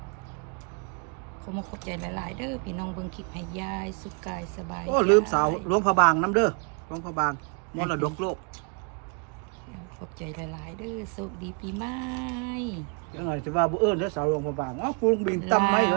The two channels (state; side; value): quieter; left; 36.6 dB